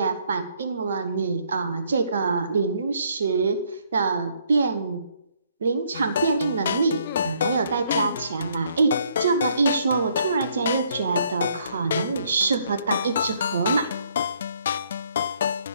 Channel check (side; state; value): both; inverted; correlation -0.67